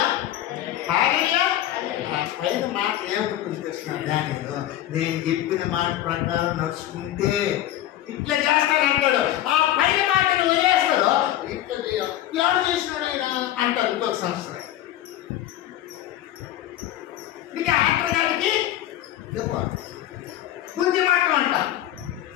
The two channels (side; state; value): right; quieter; 13.1 dB